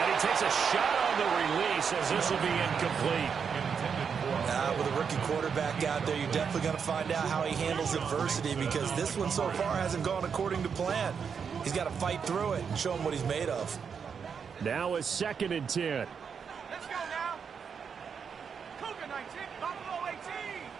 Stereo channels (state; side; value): quieter; left; 6.5 dB